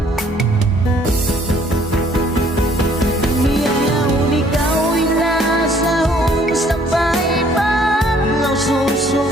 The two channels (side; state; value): both; normal; correlation 0.61